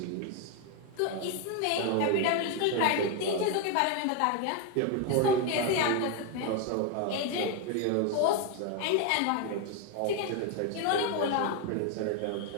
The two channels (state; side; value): different; both; correlation 0.01